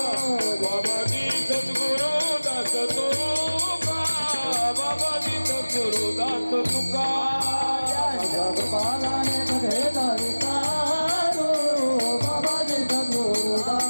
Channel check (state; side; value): inverted; both; correlation -1.00